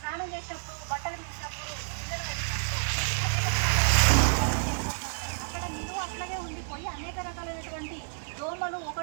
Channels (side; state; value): left; silent; 58 dB below the other